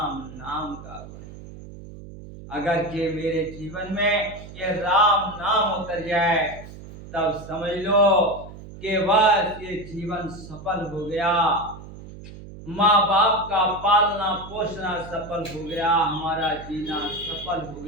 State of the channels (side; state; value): right; noise; hum, 15 dB below the sound